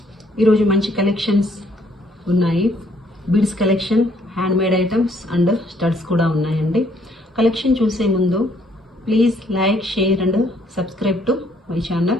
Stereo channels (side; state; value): both; normal; correlation 0.66